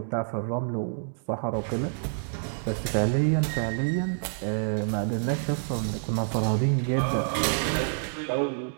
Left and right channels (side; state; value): left; silent; digital silence